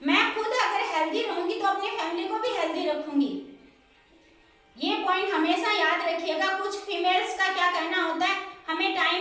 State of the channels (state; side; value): identical; both; correlation 1.00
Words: मैं खुद अगर हेल्दी रहूंगी तो अपनी फैमिली को भी हेल्दी रखूंगी। ये पॉइंट हमेशा याद रखिएगा। कुछ फीमेल्स का क्या कहना होता है, हमें